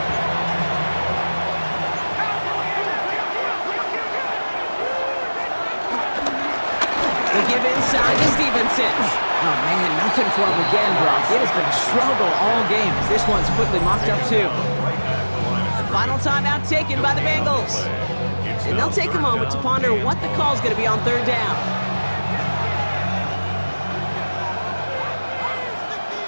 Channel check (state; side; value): inverted; both; correlation -1.00